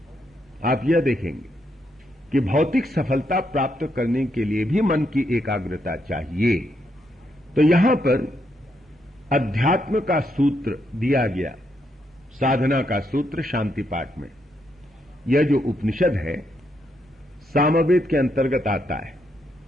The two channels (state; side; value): normal; both; correlation 0.78